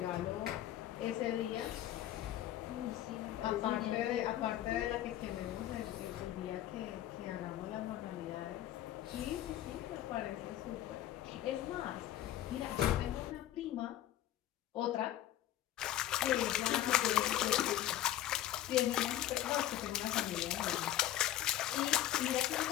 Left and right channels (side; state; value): right; quieter; 12.9 dB